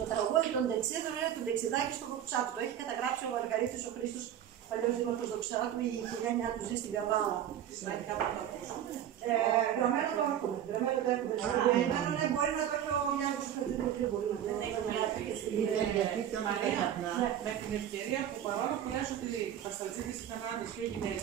τραγούδι των ντεξίδων είναι το ντεξιδάκι στο Δοξάτου. Το έχει καταγράψει ο Μαργαρίτης ο Χρήστος, παλιός δήμαρχος Δοξάτου, η οικογένειά του ζει στην Καβάλα. Γραμμένο το έχουμε. Γραμμένο το έχουμε. Ναι, μπορεί να το έχει ο Γιάννης Χρήστος. Μπορεί να το έχει. Μαρία, με την ευκαιρία που παρόλο που λες ότι οι πασταλτζίδες ήταν άντρες και οι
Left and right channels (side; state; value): left; quieter; 10.5 dB